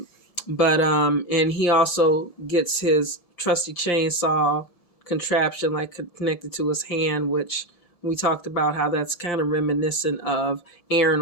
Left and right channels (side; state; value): right; late; 1.7 ms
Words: he also gets his trusty chainsaw contraption, like, connected to his hand, which we talked about how that's kind of reminiscent of Aaron